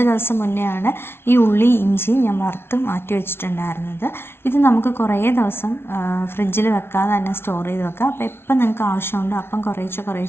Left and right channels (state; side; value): late; right; 0.12 ms